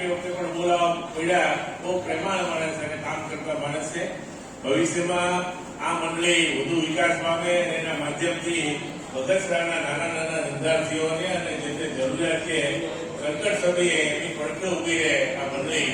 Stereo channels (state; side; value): identical; both; correlation 1.00